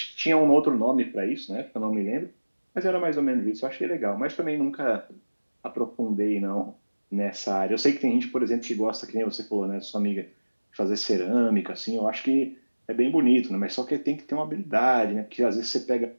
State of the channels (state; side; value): inverted; both; correlation -1.00